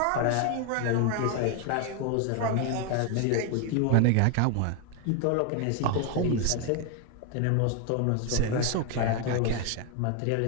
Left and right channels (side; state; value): both; different; correlation 0.01